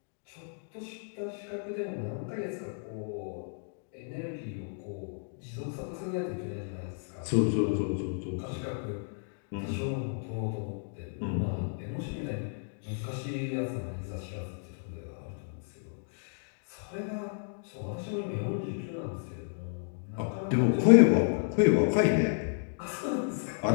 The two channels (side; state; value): right; silent; digital silence